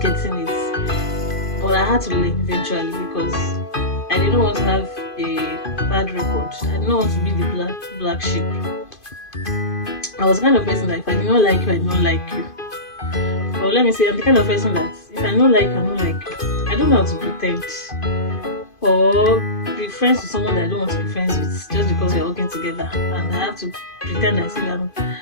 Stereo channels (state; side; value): late; right; 2.5 ms